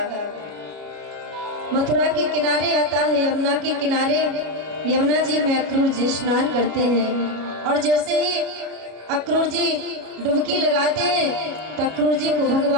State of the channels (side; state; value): left; late; 33 ms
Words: मथुरा के किनारे आता है, यमुना के किनारे। यमुना जी में अक्रूर जी स्नान करते हैं और जैसे ही अक्रूर जी डुबकी लगाते हैं तो अक्रूर जी को